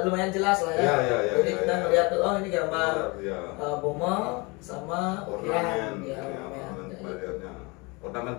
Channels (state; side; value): quieter; right; 27.5 dB